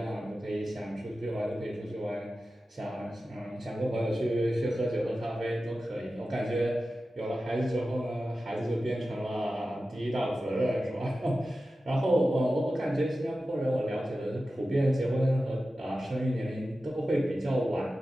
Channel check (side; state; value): both; normal; correlation 0.94